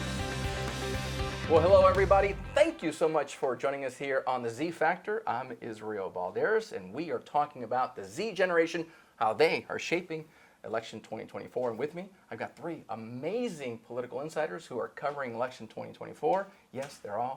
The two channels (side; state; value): both; identical; correlation 1.00